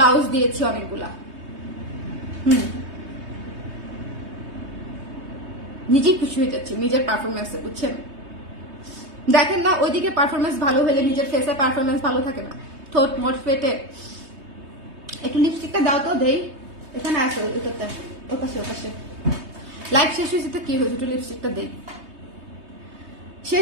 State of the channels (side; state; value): left; late; 3.2 ms